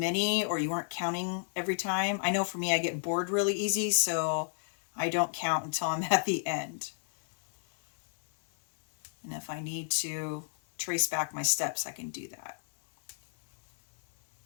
or you weren't counting every time, I know for me I get bored really easy, so I don't count until I'm at the end. And if I need to trace back my steps, I can do that.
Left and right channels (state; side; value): silent; right; 57 dB below the other